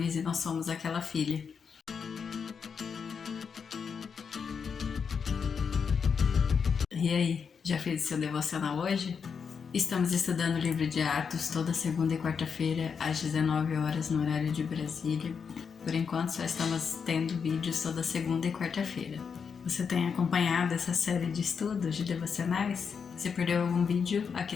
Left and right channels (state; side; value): quieter; right; 6.2 dB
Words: e nós somos Aquela Filha. E aí, já fez o seu devocional hoje? Estamos estudando o livro de Atos toda segunda e quarta-feira às 19 horas no horário de Brasília. Por enquanto só estamos tendo vídeos toda segunda e quarta-feira. Você tem acompanhado essa série de estudos de devocionais? Se perdeu algum vídeo,